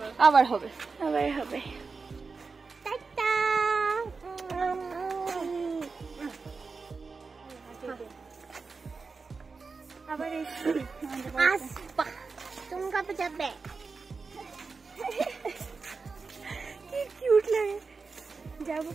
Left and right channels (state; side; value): quieter; left; 4.5 dB